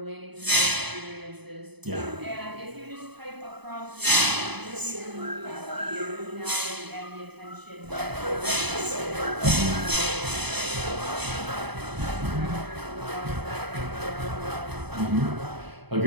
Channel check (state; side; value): late; left; 0.99 ms